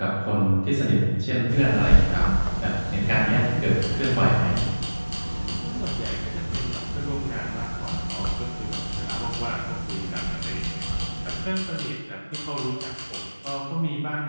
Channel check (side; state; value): both; inverted; correlation -1.00